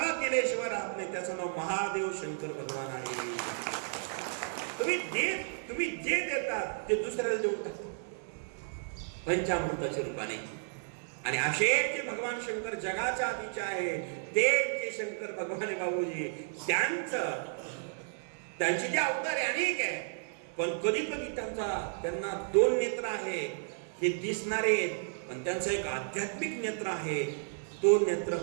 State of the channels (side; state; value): left; silent; 56 dB below the other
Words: दिल्याशिवाय राहत नाही. त्याचं नाव महादेव शंकर भगवान आहे. तुम्ही जे देतात ते दुसऱ्याला देऊन टाकतात पंचामृताच्या रूपाने. आणि असे जे भगवान शंकर जगाच्या आधीचे आहे, ते जे शंकर भगवान बाबूजी, त्यांचे जे अवतार अनेक आहे, पण कधी कधी त्यांना 2 नेत्र आहे, हे दिसणारे, पण त्यांचं एक आध्यात्मिक नेत्र आहे. तो नेत्र